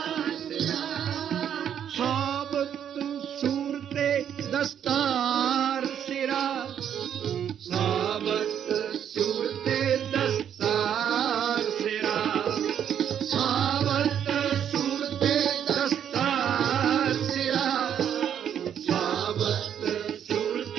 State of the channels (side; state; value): left; quieter; 9.1 dB